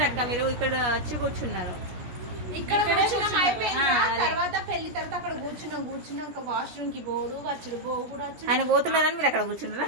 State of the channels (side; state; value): left; late; 17 ms